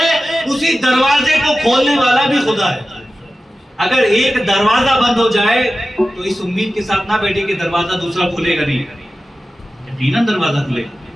اسی دروازے کو کھولنے والا بھی خدا ہے۔ اگر ایک دروازہ بند ہو جائے تو اس امید کے ساتھ نہ بیٹھے کہ دروازہ دوسرا کھلے گا نہیں، یقیناً دروازہ کھلے گا،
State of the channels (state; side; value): normal; both; correlation 0.94